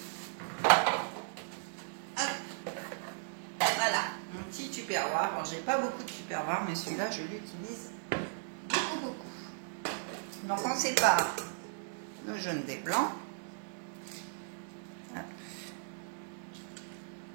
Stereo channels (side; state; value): left; silent; digital silence